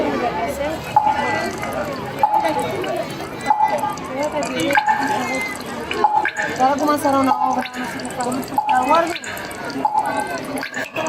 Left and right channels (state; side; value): identical; both; correlation 1.00